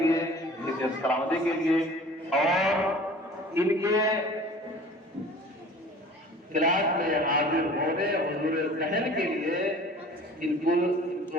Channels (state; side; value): normal; both; correlation 0.45